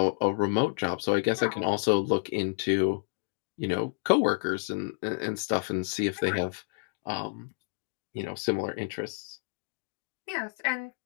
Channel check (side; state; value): right; silent; digital silence